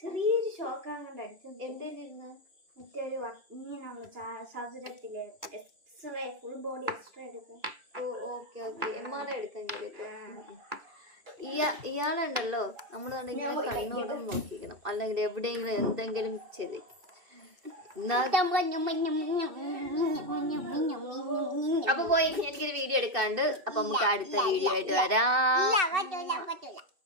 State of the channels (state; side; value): late; left; 2.7 ms